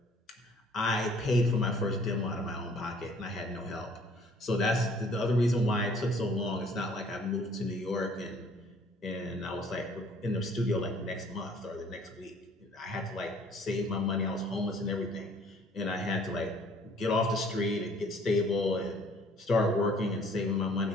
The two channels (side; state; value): both; normal; correlation 0.56